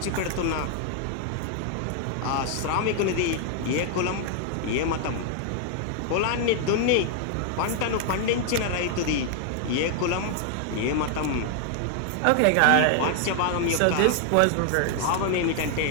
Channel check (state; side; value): different; both; correlation 0.00